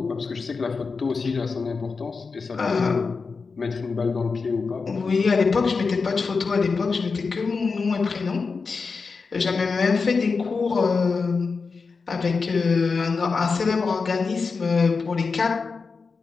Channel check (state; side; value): quieter; right; 4.7 dB